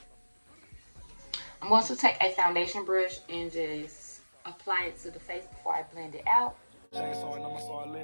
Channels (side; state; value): both; inverted; correlation -1.00